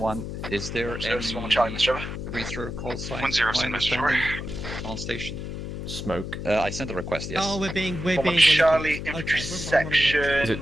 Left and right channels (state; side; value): noise; left; hum, 7 dB below the sound